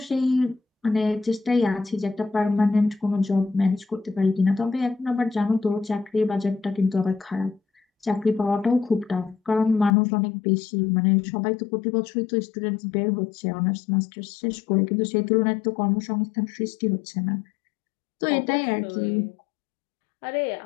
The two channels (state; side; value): drops out; right; at 9.9 s